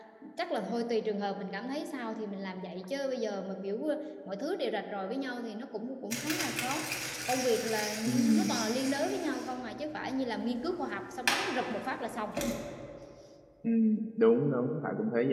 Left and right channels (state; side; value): identical; both; correlation 1.00